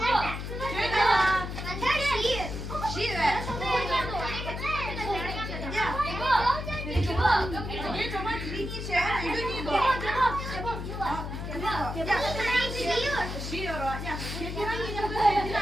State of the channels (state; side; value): noise; left; hum, 6 dB below the sound